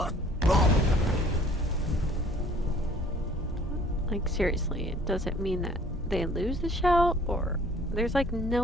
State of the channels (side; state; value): both; normal; correlation 0.56